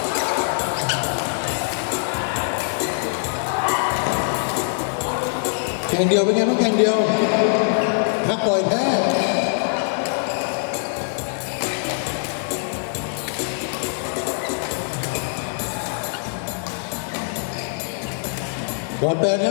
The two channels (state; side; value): silent; right; 60 dB below the other